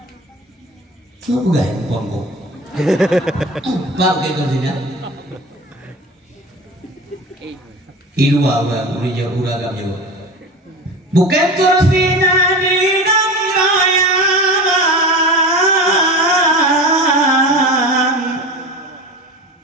So bukan pongko. Pak Bukit Tursina. Ilu awak udah agak jauh. Bukit Tursina di Raya.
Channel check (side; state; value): both; normal; correlation 0.31